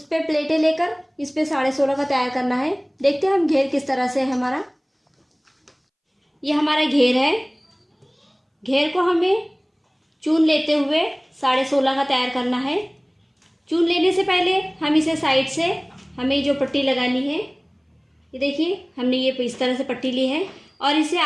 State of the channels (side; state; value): both; identical; correlation 1.00